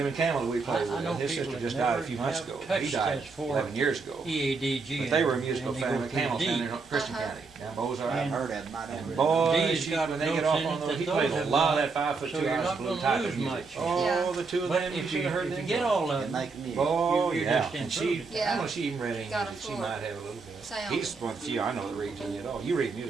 Campbell, we I played with, know his people sister that just died a never few months have ago. He touched died that for 11 years ago. EADG. But they were a musical and you go family, through Campbell's D. family in Christian Uh-huh. County, down Ozarks. I've heard of them. I And don't boy, D's got when they notes get off in on it those, that he those plays a have lot of not- that 5 foot so 2 you're ounce not blue gonna type lose of music. much. Oh, Yeah. the two of But them, you if should have heard you them. get all of They them, make music. Oh, you're yeah. just And she, improving. Yeah. I know she even read English, Got a and she full might have a little bit. sound. He's one of the few I know that reads any at all. You read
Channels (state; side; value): quieter; left; 4.4 dB